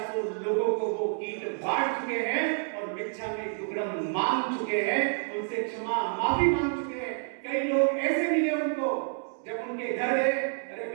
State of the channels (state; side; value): silent; left; 59 dB below the other